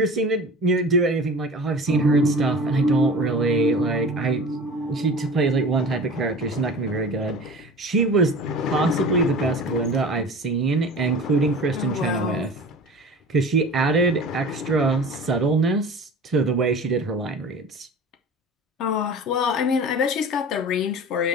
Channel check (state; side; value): normal; both; correlation 0.37